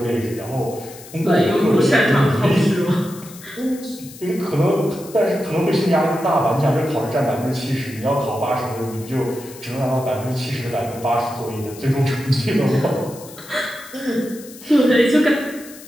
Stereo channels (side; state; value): left; noise; hiss, 18 dB below the sound